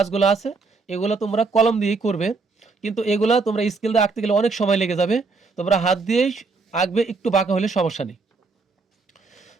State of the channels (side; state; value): left; quieter; 4.2 dB